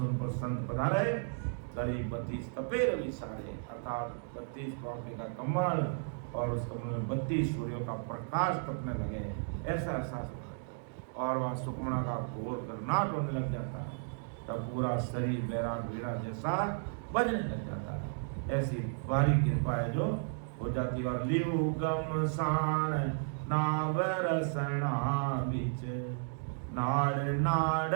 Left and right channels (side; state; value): left; silent; digital silence